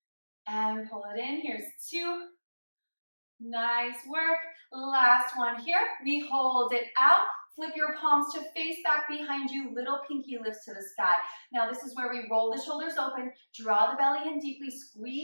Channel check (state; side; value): inverted; both; correlation -1.00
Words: And pull it in. Here's 2. Nice work. Last one here. We hold it out. Flip your palms to face back behind you. Little pinky lifts to the sky. Now this is where we roll the shoulders open. Draw the belly in deeply.